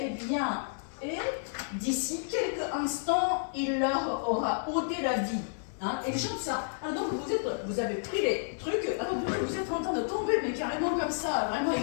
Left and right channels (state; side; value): silent; right; digital silence